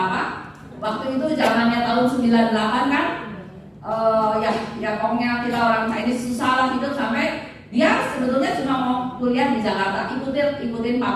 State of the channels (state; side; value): identical; both; correlation 1.00